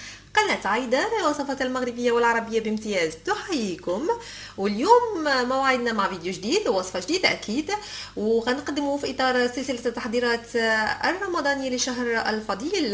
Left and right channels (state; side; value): identical; both; correlation 1.00